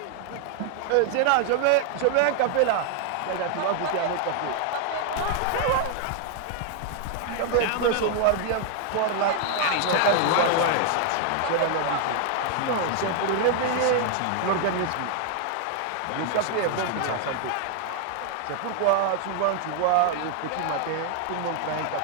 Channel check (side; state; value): both; different; correlation 0.00